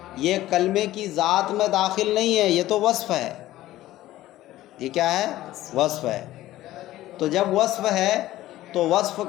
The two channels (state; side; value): quieter; right; 15.3 dB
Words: یہ کلمے کی ذات میں داخل نہیں ہے، یہ تو وصف ہے۔ یہ کیا ہے؟ وصف ہے۔ تو جب وصف ہے تو وصف